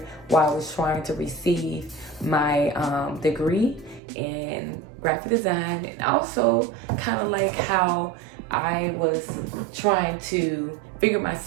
while I was trying to receive my degree in graphic design, and also kind of like how I was trying to figure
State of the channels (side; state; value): left; drops out; at 4.0 s